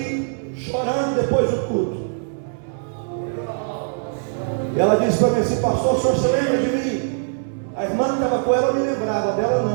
chorando depois do culto. E ela disse para mim assim: pastor, o senhor se lembra de mim? A irmã que estava com ela eu me lembrava, dela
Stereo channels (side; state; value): left; silent; 64 dB below the other